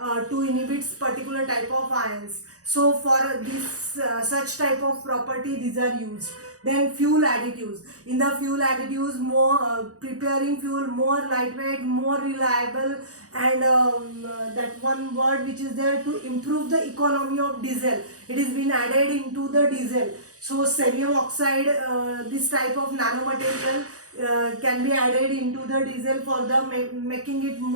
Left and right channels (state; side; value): late; left; 0.66 ms